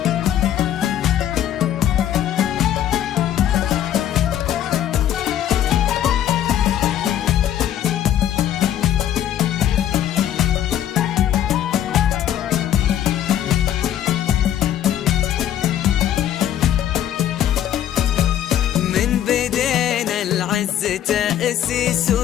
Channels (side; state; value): right; quieter; 11.0 dB